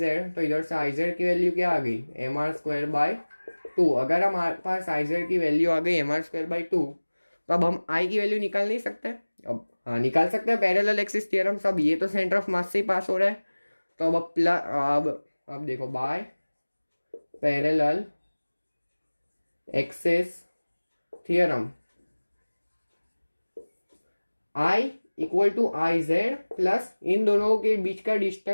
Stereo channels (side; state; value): both; inverted; correlation -1.00